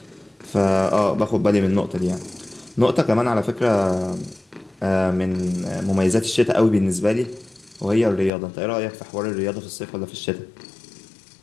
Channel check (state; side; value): drops out; right; at 8.3 s